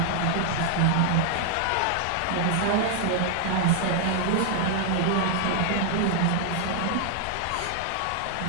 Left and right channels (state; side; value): different; both; correlation 0.00